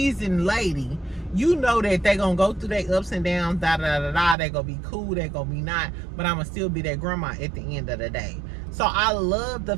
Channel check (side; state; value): left; drops out; at 4.4 s